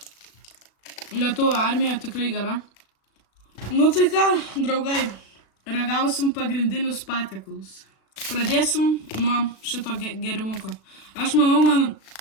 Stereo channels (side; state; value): right; late; 36 ms